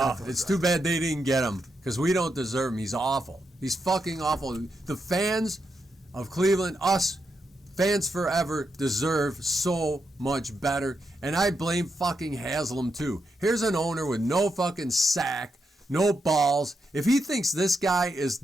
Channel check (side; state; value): both; normal; correlation 0.83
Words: It's too bad they didn't get him because we don't deserve him. He's awful. He's fucking awful. The fans of Cleveland, us fans forever, deserve so much better. And I blame fucking Haslam too. Here's an owner with no fucking sack. No balls. If he thinks this guy is